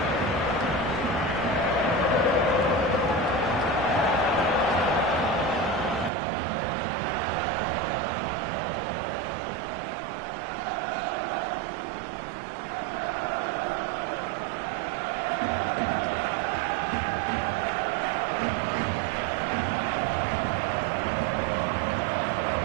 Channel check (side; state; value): left; drops out; at 6.1 s